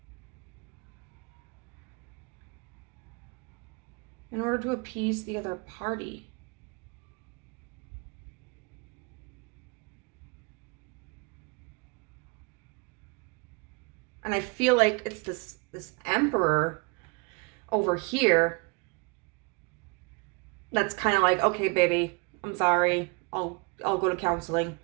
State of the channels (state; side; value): quieter; left; 30.4 dB